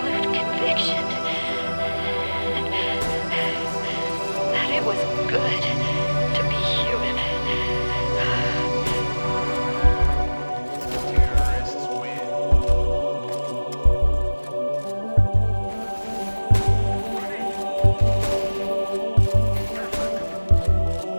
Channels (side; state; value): both; inverted; correlation -1.00